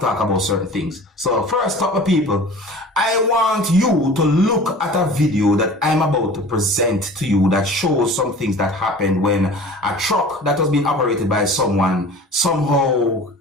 about certain things. So first up, my people, I want you to look at a video that I'm about to present to you that shows some things that happened when a truck that was being operated by someone somehow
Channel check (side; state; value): both; normal; correlation 0.41